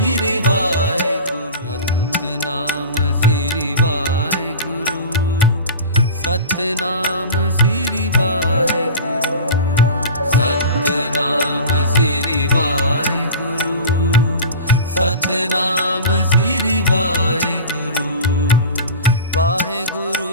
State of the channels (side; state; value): both; inverted; correlation -0.33